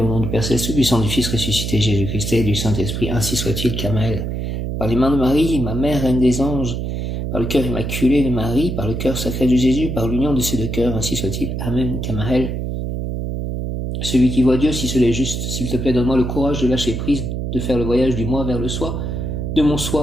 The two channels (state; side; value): noise; right; hum, 3 dB below the sound